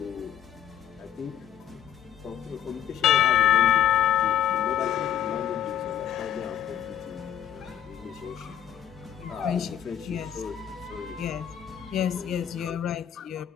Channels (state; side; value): quieter; right; 10.4 dB